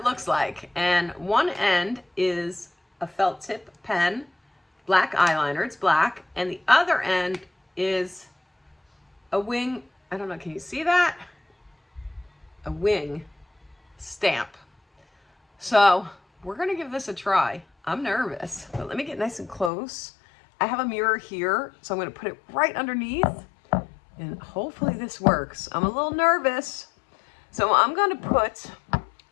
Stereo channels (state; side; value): drops out; right; at 19.7 s